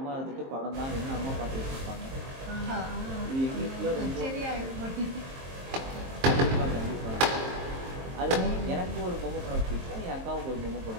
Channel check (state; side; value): late; left; 23 ms